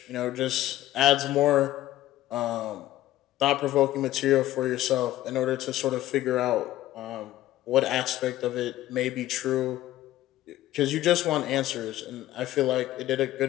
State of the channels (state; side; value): quieter; right; 14.8 dB